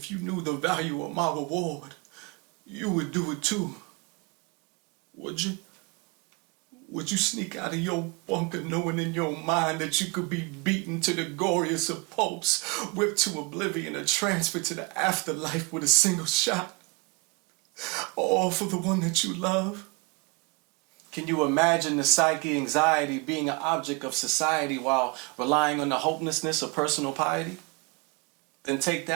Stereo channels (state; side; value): quieter; left; 28.6 dB